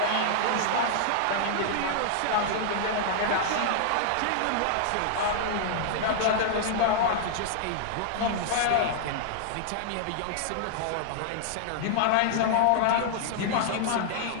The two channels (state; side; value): different; both; correlation -0.01